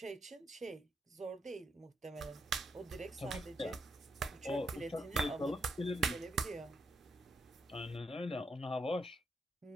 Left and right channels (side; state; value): both; normal; correlation 0.79